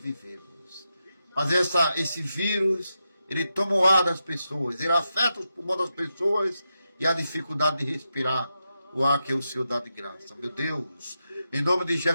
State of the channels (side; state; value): both; inverted; correlation -0.87